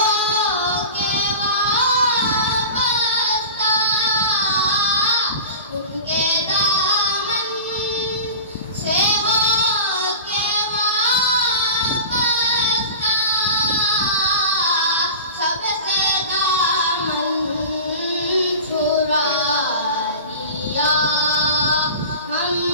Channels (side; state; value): both; inverted; correlation -0.34